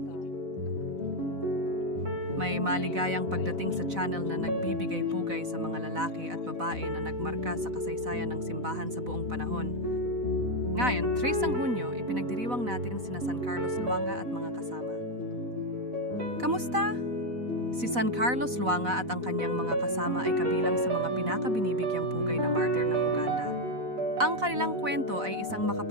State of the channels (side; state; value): left; late; 4.0 ms